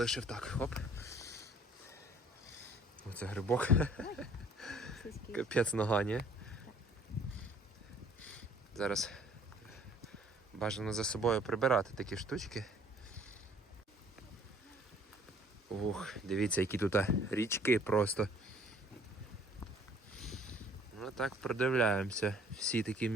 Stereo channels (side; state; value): both; normal; correlation 0.56